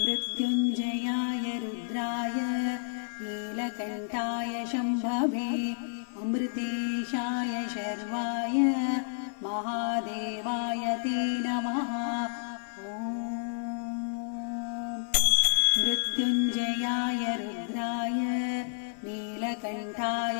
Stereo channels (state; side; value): silent; right; 58 dB below the other